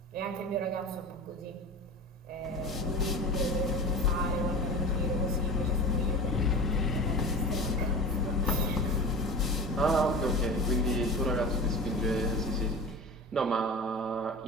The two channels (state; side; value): normal; both; correlation 0.32